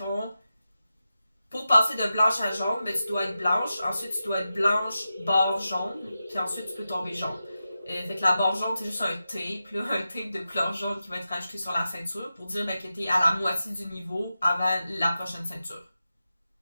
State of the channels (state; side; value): inverted; both; correlation -0.91